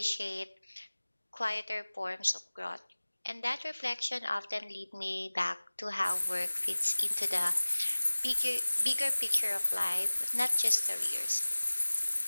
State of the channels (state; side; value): inverted; both; correlation -1.00